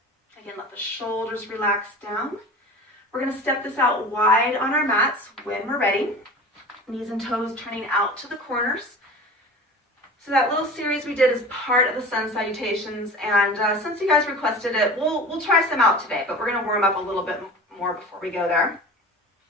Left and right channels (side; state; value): both; normal; correlation 0.36